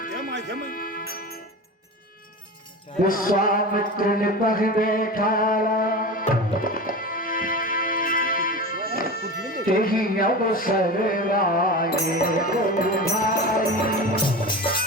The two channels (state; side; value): normal; both; correlation 0.29